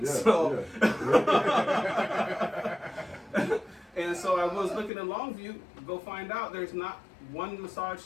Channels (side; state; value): right; drops out; at 4.9 s